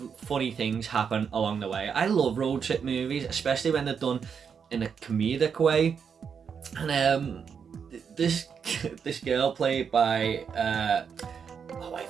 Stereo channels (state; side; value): quieter; left; 6.7 dB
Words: funny things happen along the way. I love road trip movies, especially when they're done in a comedic way. And this girl played by I